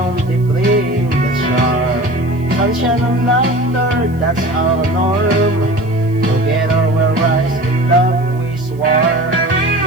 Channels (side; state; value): right; noise; hiss, 29 dB below the sound